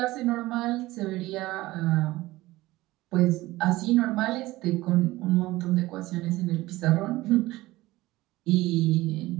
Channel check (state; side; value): quieter; left; 18.3 dB